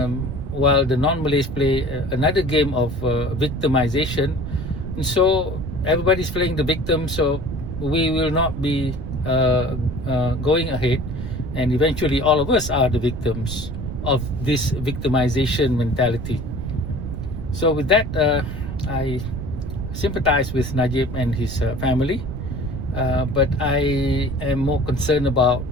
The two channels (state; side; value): noise; right; rumble, 8 dB below the sound